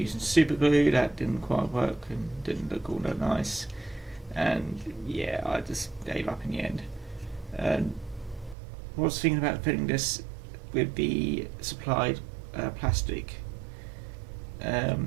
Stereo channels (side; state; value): left; drops out; at 8.6 s